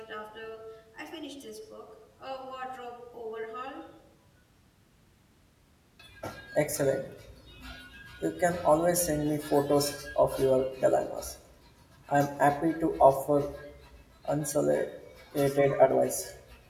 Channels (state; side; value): identical; both; correlation 1.00